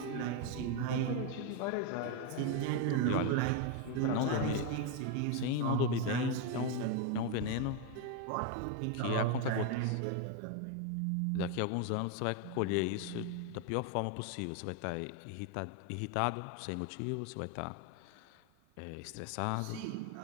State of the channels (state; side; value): different; both; correlation 0.01